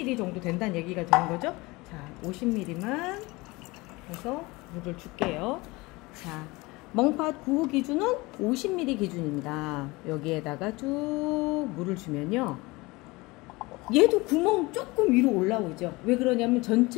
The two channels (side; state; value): right; quieter; 23.0 dB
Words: 정도 된다는 얘기가 되는 거죠. 자, 50ml만 해서 물을 줄게요. 자, 멍팥 9호 기준은 50ml 기준입니다. 여기에다가 쭉 물을 주면요, 얘도 구멍 조금 위로 올라오죠. 왜 그러냐면